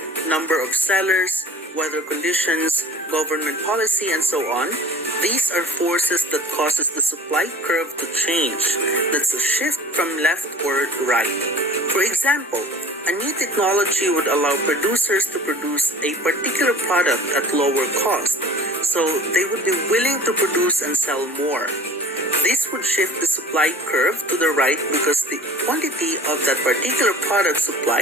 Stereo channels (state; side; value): normal; both; correlation 0.44